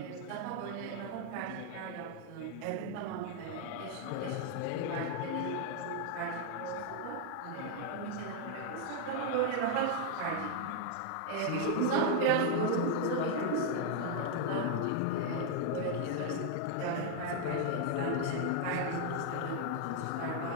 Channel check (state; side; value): different; both; correlation 0.00